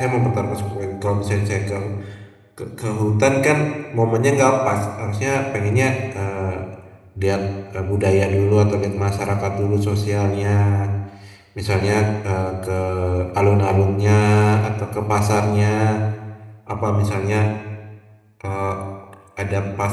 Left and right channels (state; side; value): identical; both; correlation 1.00